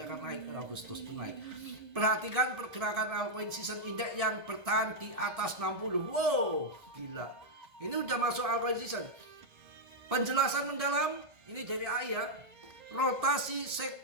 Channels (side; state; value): left; late; 1.6 ms